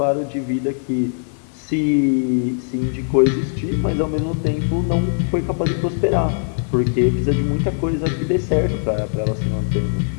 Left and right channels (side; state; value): right; silent; digital silence